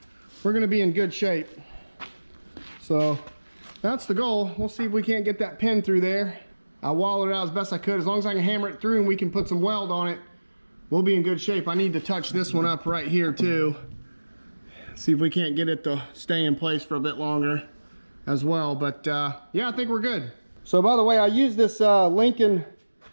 we're gonna be in good shape. So that's the goal. We'll see if we can't get that pin through there. I wallowed it out as best I could. As long as I can hammer it through and we can put some weld on it, we'll be in good shape. I need to touch this one up right here too. See if we can't get it to stay in place for a bit longer as well. But yeah, I think we're good. So by the way, I use this Lincoln.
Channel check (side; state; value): both; inverted; correlation -1.00